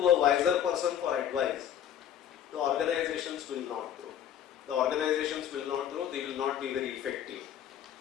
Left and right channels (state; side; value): quieter; right; 10.0 dB